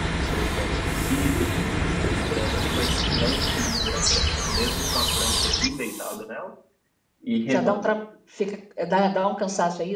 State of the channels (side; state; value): both; identical; correlation 1.00